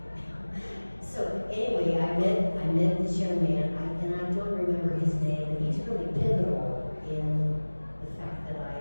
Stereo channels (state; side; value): inverted; both; correlation -1.00